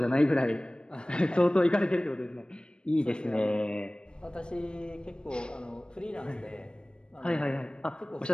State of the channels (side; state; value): right; late; 0.052 ms